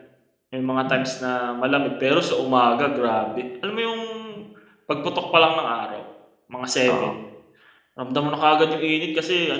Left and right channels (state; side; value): identical; both; correlation 1.00